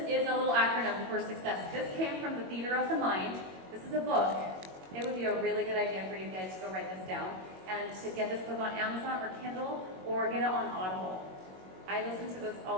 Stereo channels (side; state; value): left; late; 21 ms